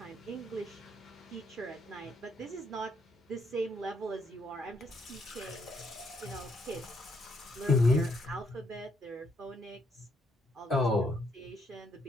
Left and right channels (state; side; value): normal; both; correlation 0.73